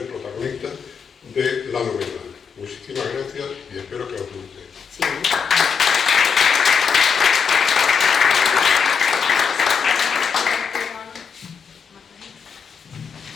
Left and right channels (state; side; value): quieter; right; 6.3 dB